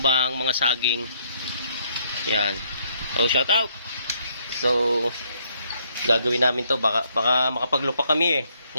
mga saging. Ayan, so shout out. So gagawin namin to, baka makapaglupak kami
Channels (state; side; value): inverted; both; correlation -0.70